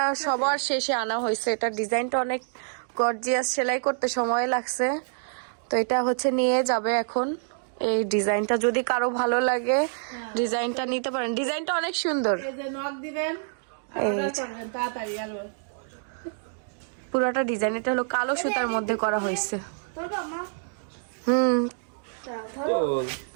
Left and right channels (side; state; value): left; silent; digital silence